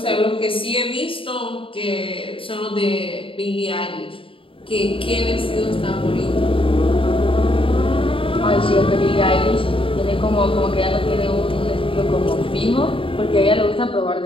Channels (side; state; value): right; late; 0.26 ms